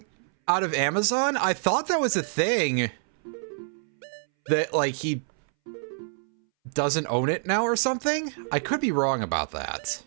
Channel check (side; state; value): left; silent; 61 dB below the other